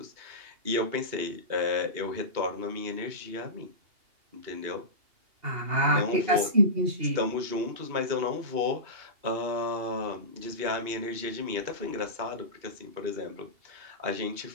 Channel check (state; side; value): late; left; 2.8 ms